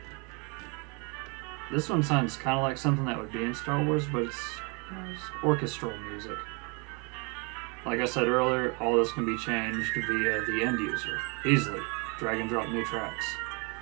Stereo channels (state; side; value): quieter; left; 32.5 dB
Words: This one sounds kind of like something that would be in Star Wars, but it's orchestral music. Like I said earlier, all this can be changed via the end user. Easily. Drag and drop new tracks.